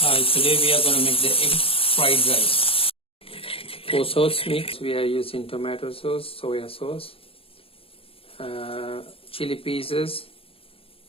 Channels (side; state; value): right; late; 0.27 ms